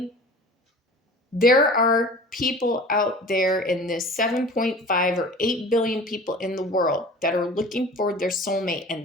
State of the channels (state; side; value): normal; both; correlation 0.41